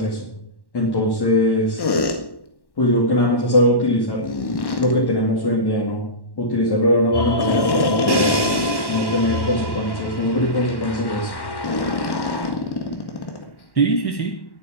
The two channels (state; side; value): late; right; 1.1 ms